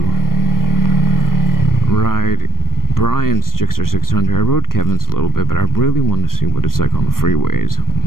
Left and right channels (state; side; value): late; right; 0.91 ms